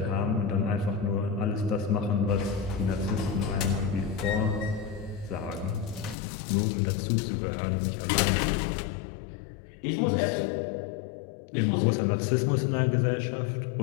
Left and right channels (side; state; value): right; drops out; at 6.2 s